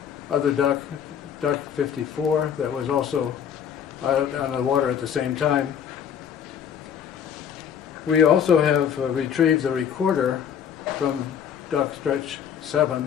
other duck, Duck 54, that was also out on the water at the same time. We also have retrieved the recorder from Duck Stretch 7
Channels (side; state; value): right; quieter; 8.3 dB